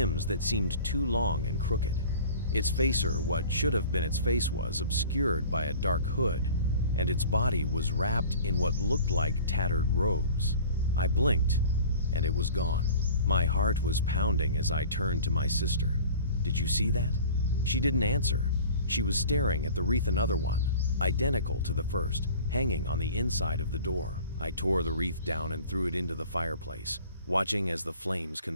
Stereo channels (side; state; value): both; inverted; correlation -0.44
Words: that seemed too long and crooked. Its face, or what should have been its face, was obscured by a dark hood, and its body was wrapped in what looked like tattered robes. I blinked, and it was gone. My heart was pounding as I turned to my sister. "Did you see that?" She didn't answer. She was staring at the wreath, another one, identical to the first, hanging on the inside of the door. I tore the wreath down and threw it into the fireplace. watching as the flames